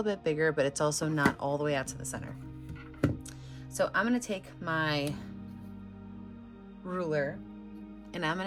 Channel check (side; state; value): both; identical; correlation 1.00